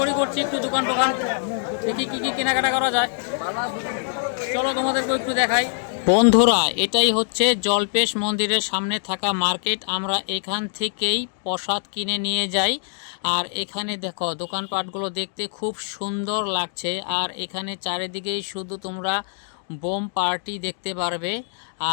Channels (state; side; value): silent; right; digital silence